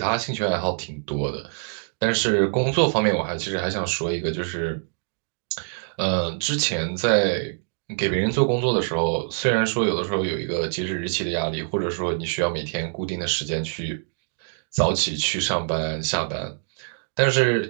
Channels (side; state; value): left; silent; digital silence